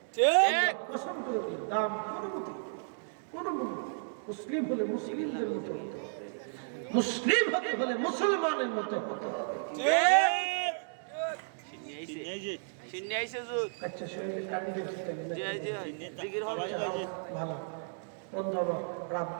কসম করে দিই, দাম কোনো মূল্য। মুসলিম হলে মুসলিমদের মতো হতে হবে, মুসলিম হতে হলে মুসলমানের মতো হতে হবে। আচ্ছা শরীরে কাটি ভালো বন্ধ আমার রাত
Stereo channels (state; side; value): silent; left; digital silence